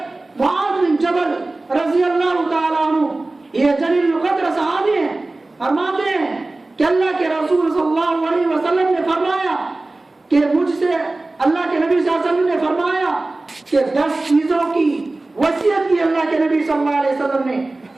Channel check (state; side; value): quieter; left; 3.0 dB